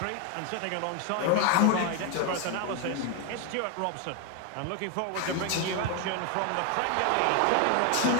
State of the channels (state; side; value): different; both; correlation 0.01